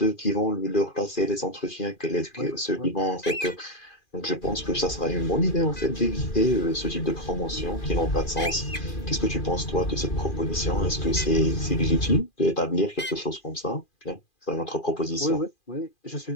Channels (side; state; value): right; late; 2.4 ms